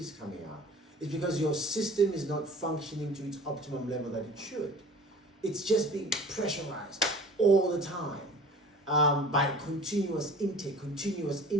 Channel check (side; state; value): both; normal; correlation 0.43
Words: coming out. It's because your system is not functioning to its optimum level that it should. It's just being pressurized all the time by continuous intake.